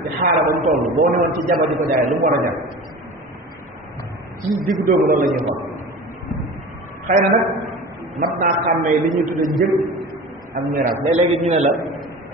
ci xaara ba mu toll boo newoon ci jaba di ko jaay lu mu war a jar ci diggu doomu loolu la ñuy xool xëy na nag mat naa xàmmee li ñuy tudde njëg ak miraas léeg-léegi ñu ne la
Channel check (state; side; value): normal; both; correlation 0.35